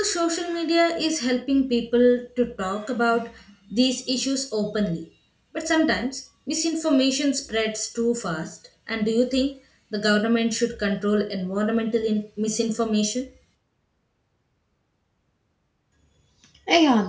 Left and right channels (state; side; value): identical; both; correlation 1.00